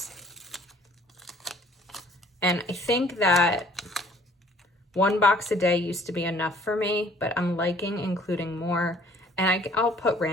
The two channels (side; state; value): both; normal; correlation 0.57